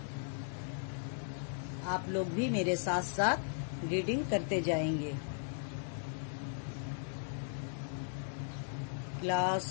आप लोग भी मेरे साथ साथ रीडिंग करते जाएंगे। Class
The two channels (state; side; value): silent; right; digital silence